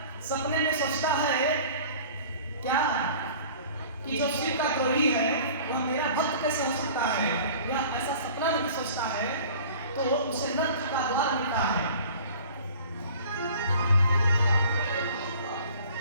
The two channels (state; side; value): inverted; both; correlation -0.46